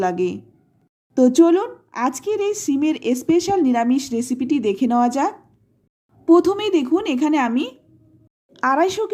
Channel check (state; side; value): identical; both; correlation 1.00